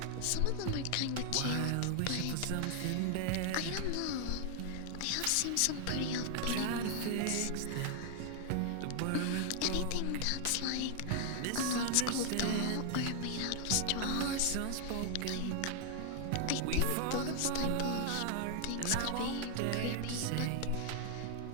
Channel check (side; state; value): both; different; correlation 0.00